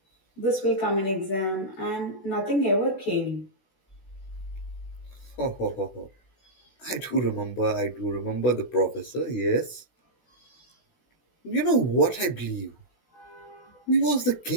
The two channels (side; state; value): right; late; 16 ms